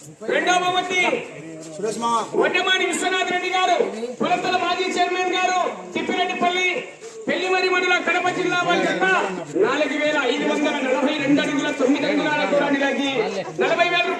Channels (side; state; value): both; identical; correlation 1.00